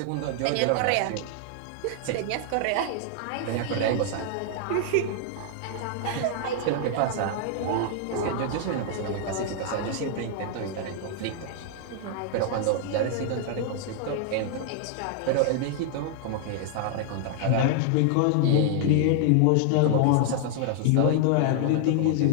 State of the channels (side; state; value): both; different; correlation 0.00